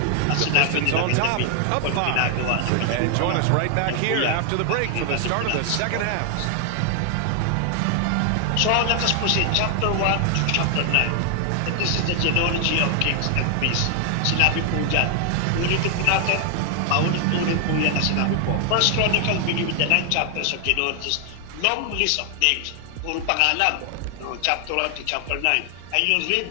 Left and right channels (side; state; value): both; different; correlation 0.00